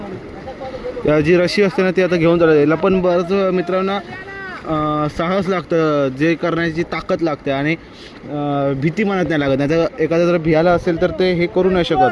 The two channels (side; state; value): both; identical; correlation 1.00